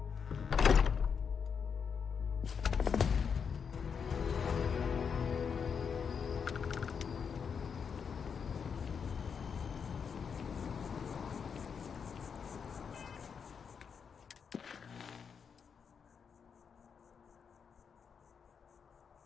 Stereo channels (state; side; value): quieter; right; 6.5 dB